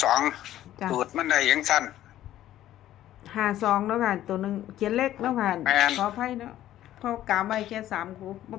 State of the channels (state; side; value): quieter; right; 13.0 dB